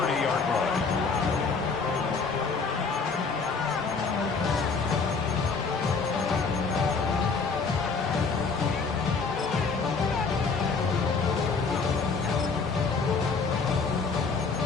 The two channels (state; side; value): quieter; right; 4.8 dB